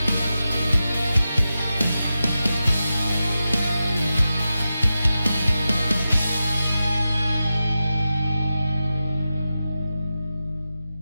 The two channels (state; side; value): inverted; both; correlation -0.91